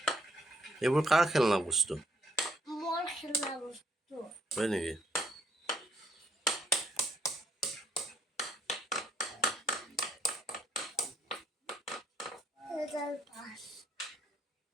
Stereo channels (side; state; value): both; normal; correlation 0.67